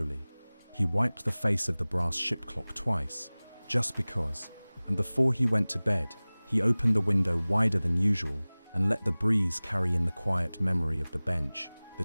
He wiped the face of the brass ship clock twice, just because, and before he went to bed, he opened the window wider than usual and let the breeze carry in the quiet memory of the bench, the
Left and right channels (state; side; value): inverted; both; correlation -1.00